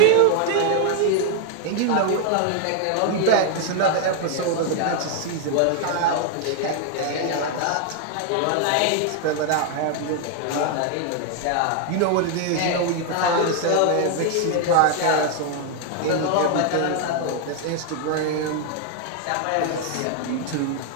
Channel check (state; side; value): different; both; correlation 0.00